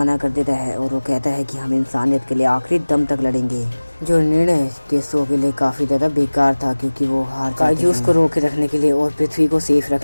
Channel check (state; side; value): inverted; both; correlation -1.00